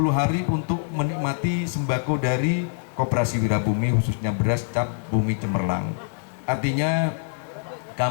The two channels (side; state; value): right; silent; 60 dB below the other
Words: hari untuk menikmati sembako dari Koperasi Wirabumi, khususnya beras cap bumi cemerlang. Artinya